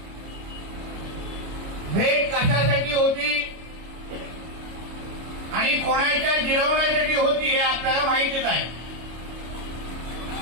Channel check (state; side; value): late; left; 26 ms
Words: भेट कशासाठी होती आणि कोणाच्या जिरवण्यासाठी होती हे आपल्याला माहितीच आहे।